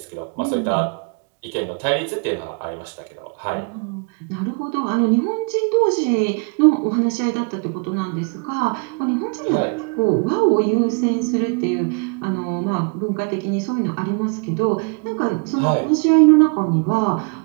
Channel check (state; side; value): quieter; left; 39.3 dB